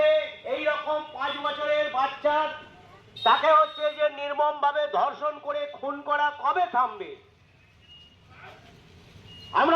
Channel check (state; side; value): identical; both; correlation 1.00